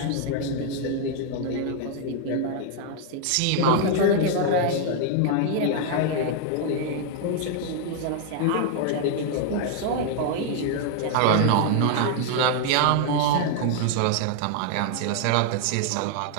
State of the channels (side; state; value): both; different; correlation 0.00